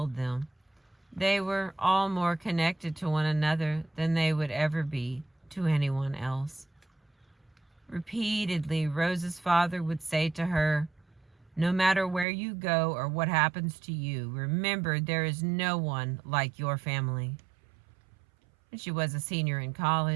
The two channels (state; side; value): drops out; left; at 12.2 s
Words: them, they were all more connected to one another than they would ever be to anyone else. Repeatedly, Rose's father would say to her, "No matter where you go or what happens to you, remember there is no one like your family." When she was a senior in